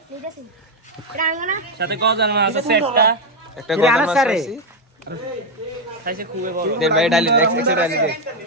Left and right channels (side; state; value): both; normal; correlation 0.05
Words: সাথে গজার মাছ আছে একটা একটা গজার মাছ খাইছি খাইছে খুবই বড় দেন ভাই ডালি নেক্সট এক্সট্রা ডালি দে